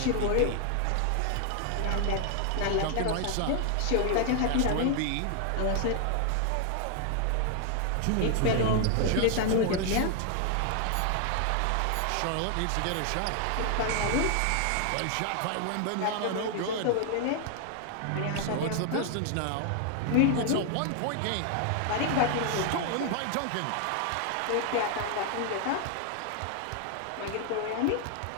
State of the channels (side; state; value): both; different; correlation 0.00